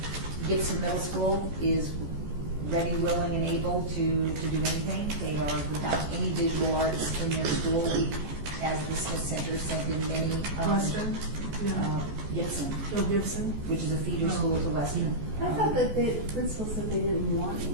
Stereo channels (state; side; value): late; left; 14 ms